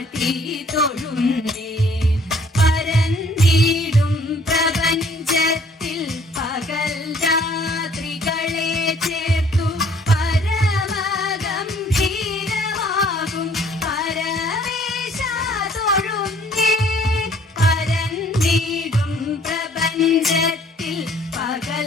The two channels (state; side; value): normal; both; correlation 0.59